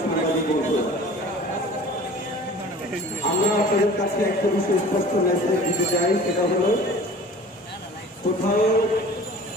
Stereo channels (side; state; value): both; normal; correlation 0.44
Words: সাংবাদিক বন্ধু, আমরা আপনাদের কাছে একটা বিষয় স্পষ্ট মেসেজ দিতে চাই। সেটা হলো, কোথাও